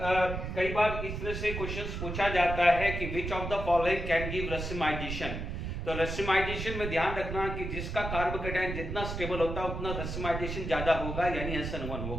बार इस तरह से क्वेश्चंस पूछा जाता है कि विच of the following can give racemisation. तो रेसिमाइजेशन में ध्यान रखना कि जिसका कार्बोकेटाइन जितना स्टेबल होता है उतना रेसिमाइजेशन ज्यादा होगा, यानी SN1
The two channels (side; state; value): right; noise; rumble, 5 dB below the sound